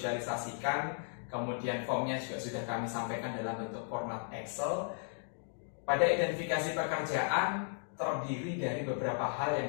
Kemudian formnya juga sudah kami sampaikan dalam bentuk format Excel. Pada identifikasi pekerjaan terdiri dari beberapa hal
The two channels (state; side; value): silent; right; 54 dB below the other